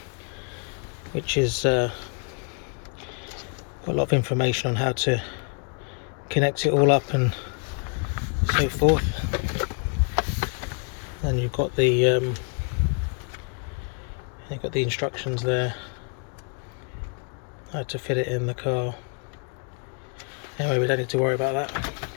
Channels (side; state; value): right; quieter; 39.0 dB